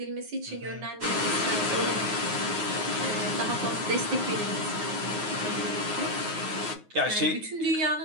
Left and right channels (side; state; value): left; late; 9.5 ms